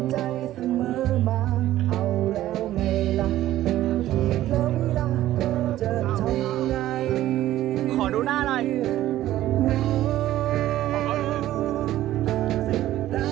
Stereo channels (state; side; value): quieter; left; 14.1 dB